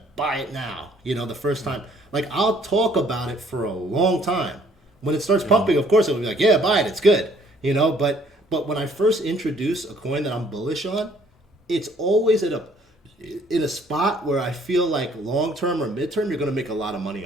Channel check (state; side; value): normal; both; correlation 0.61